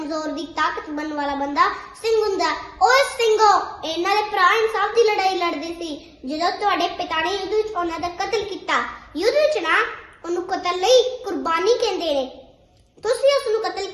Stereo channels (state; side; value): identical; both; correlation 1.00